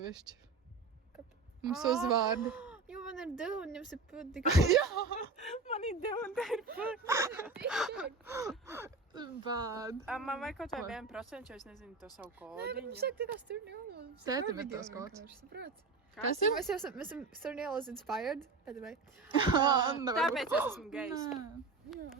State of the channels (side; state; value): left; quieter; 4.0 dB